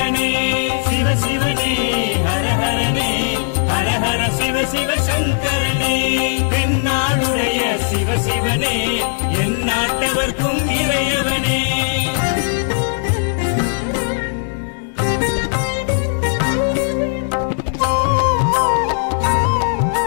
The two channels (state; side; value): silent; right; digital silence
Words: சிவசிவனே ஹரஹரனே ஹரஹர சிவ சிவ சங்கரனே தென்னாடுடைய சிவசிவனே என் நாட்டவர்க்கும் இறைய